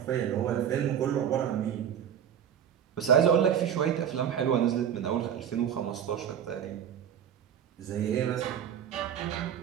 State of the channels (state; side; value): quieter; left; 9.1 dB